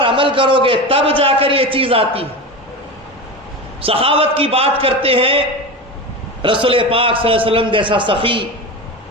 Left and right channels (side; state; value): both; normal; correlation 0.25